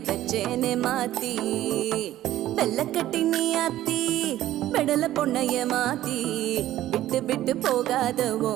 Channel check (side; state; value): left; quieter; 14.0 dB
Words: பெச்சேனே மாத்தி வெள்ளக்கட்டி நீ ஆத்தி பெடல பொண்ணைய மாத்தி விட்டு விட்டு போகாத